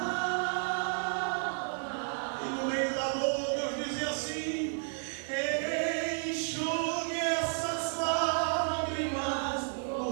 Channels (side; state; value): left; silent; 56 dB below the other